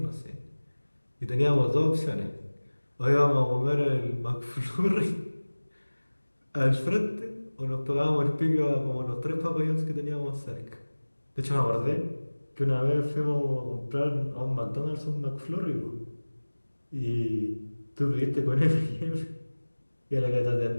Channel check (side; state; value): both; inverted; correlation -1.00